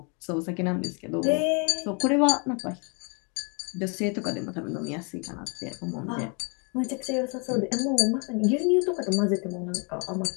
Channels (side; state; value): right; quieter; 35.5 dB